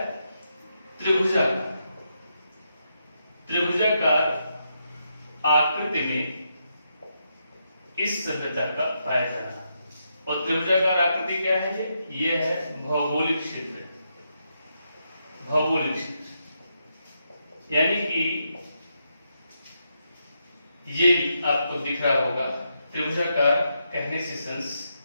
त्रिभुजाकार। त्रिभुजाकार आकृति में इस सभ्यता का पाया जाना। और त्रिभुजाकार आकृति क्या है? ये है भौगोलिक क्षेत्र। भौगोलिक क्षेत्र यानी कि ये आपको दिख रहा होगा, त्रिभुजाकार कहने से सेंस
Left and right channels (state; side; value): inverted; both; correlation -0.82